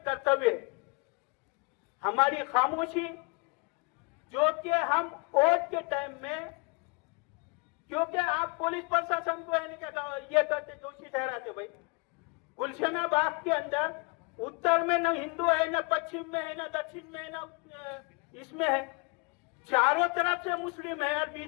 कर्तव्य है। हमारी खामोशी, जो कि हम वोट के टाइम में, क्योंकि आप पुलिस प्रशासन को ये करते दोषी ठहराते भाई। गुलशना बाग के अंदर उत्तर में न हिंदू है, न पश्चिम में है, न दक्षिण में है, न इसमें है, चारों तरफ से मुस्लिम है और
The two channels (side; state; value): right; quieter; 30.0 dB